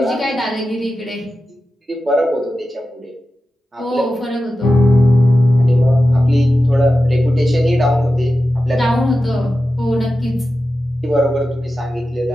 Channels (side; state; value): both; normal; correlation 0.92